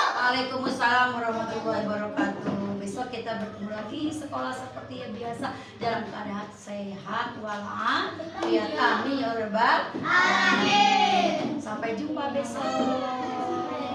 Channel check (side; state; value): both; identical; correlation 1.00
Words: Waalaikumsalam warahmatullahi wabarakatuh. Besok kita bertemu lagi sekolah seperti yang biasa dalam keadaan sehat walafiat. Amin ya Rabbal alamin. Sampai jumpa besok.